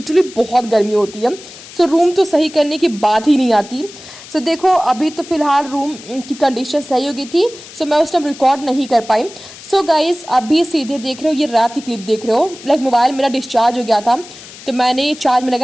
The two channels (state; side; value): noise; left; hiss, 17 dB below the sound